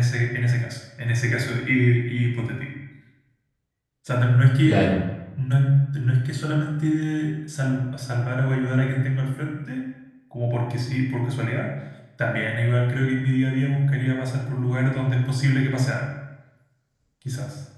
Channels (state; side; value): identical; both; correlation 1.00